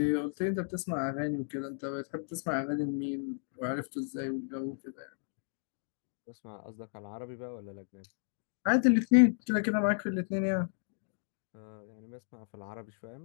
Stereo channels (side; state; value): right; silent; digital silence